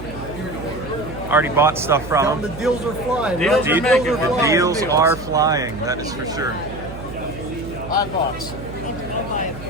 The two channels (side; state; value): right; noise; hum, 12 dB below the sound